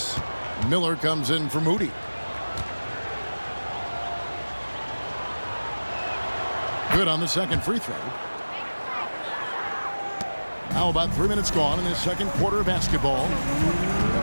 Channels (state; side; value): inverted; both; correlation -1.00